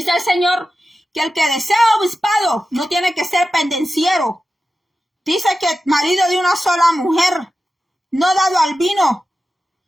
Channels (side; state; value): both; normal; correlation 0.93